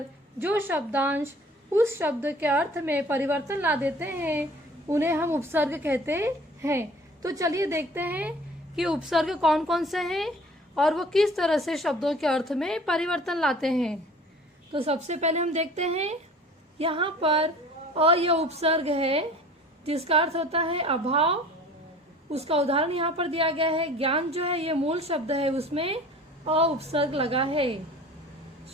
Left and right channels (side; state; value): both; normal; correlation 0.46